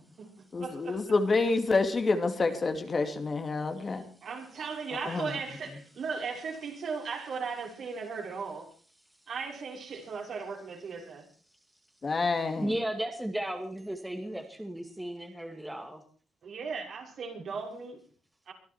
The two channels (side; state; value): both; normal; correlation 0.88